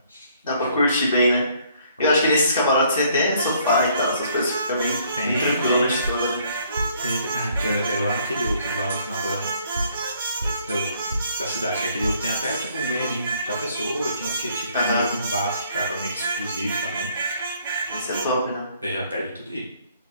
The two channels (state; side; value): inverted; both; correlation -0.64